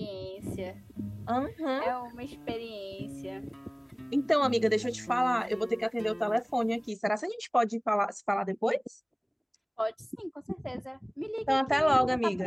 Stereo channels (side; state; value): both; identical; correlation 1.00